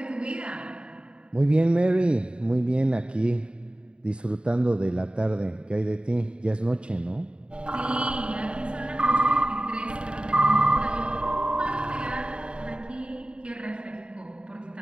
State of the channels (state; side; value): late; left; 0.053 ms